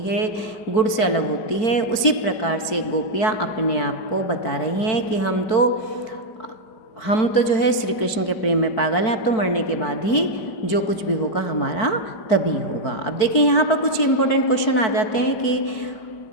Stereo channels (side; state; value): right; late; 4.6 ms